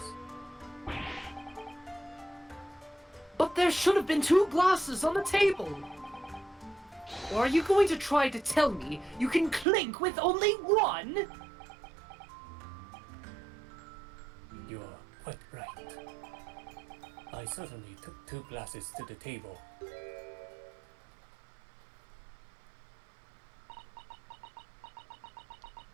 But there should have been 2 glasses on the table. Or are you going to try to tell me you can clink with only 1? You are quite right. I certainly took 2 glasses to the table.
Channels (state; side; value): drops out; left; at 9.7 s